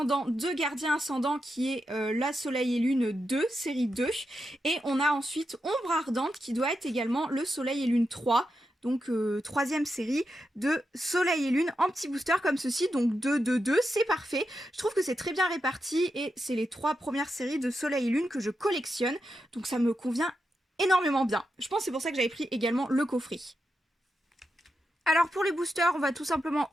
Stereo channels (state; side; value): normal; both; correlation 0.87